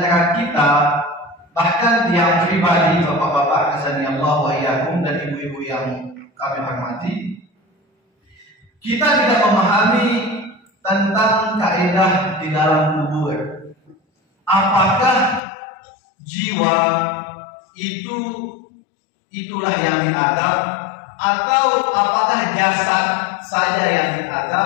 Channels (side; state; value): right; drops out; at 15.4 s